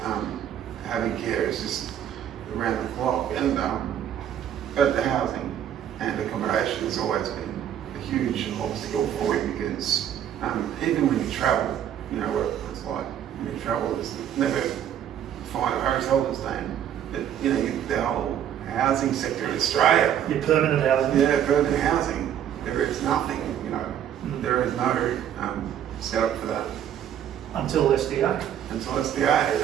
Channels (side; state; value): left; quieter; 10.0 dB